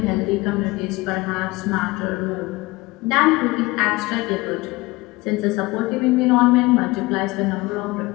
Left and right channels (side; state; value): right; quieter; 21.9 dB